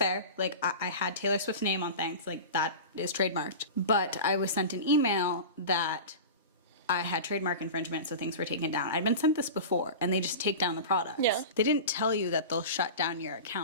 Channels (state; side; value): inverted; both; correlation -0.30